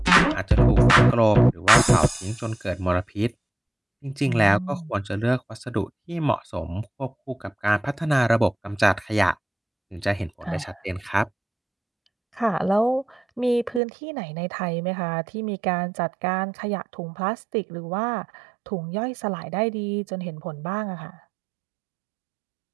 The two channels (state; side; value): drops out; left; at 13.8 s